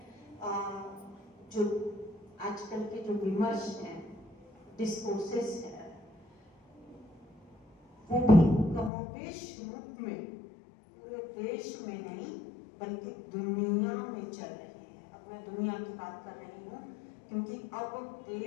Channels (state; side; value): drops out; right; at 8.9 s